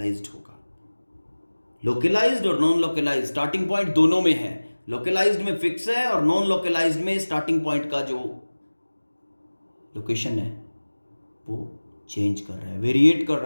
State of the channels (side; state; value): both; inverted; correlation -1.00